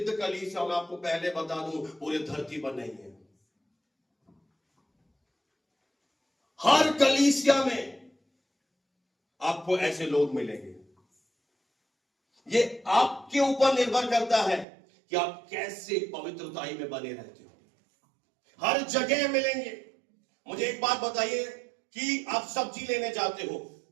कलीसिया, मैं आपको पहले बता दूं पूरे धरती पर नहीं है। हर कलीसिया में आपको ऐसे लोग मिलेंगे। ये आपके ऊपर निर्भर करता है कि आप कैसे पवित्रताई में बने रहते हो। हर जगह मिलेंगे। मुझे एक बात बताइए कि आप सब्जी लेने जाते हो,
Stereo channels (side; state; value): left; drops out; at 14.7 s